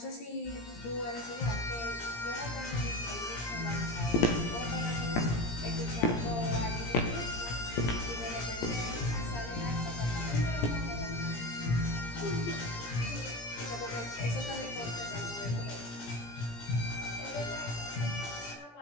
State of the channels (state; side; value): late; right; 17 ms